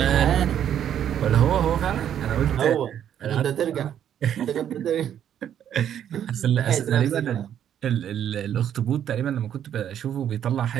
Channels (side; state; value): left; quieter; 9.8 dB